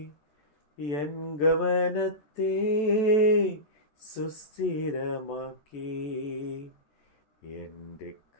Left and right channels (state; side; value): late; right; 14 ms